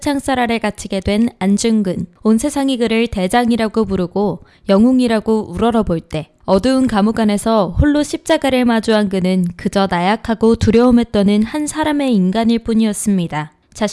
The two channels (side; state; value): both; identical; correlation 1.00